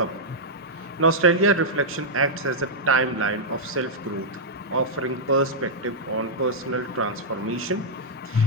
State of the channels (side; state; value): both; normal; correlation -0.08